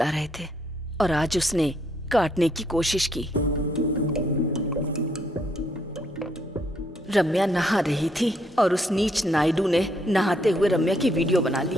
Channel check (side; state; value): both; normal; correlation 0.72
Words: रहे थे और आज उसने काटने की कोशिश की। रम्या नहा रही थी और उस नीच नायडू ने नहाते हुए रम्या की वीडियो बना